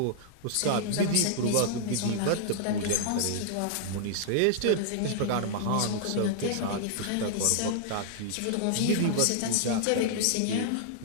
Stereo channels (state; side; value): different; both; correlation -0.01